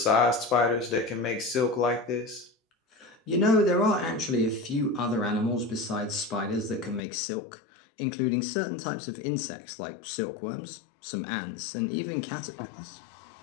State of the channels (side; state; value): right; drops out; at 7.0 s